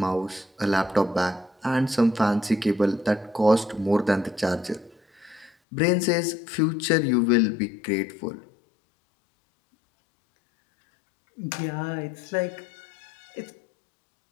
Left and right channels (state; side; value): drops out; right; at 5.5 s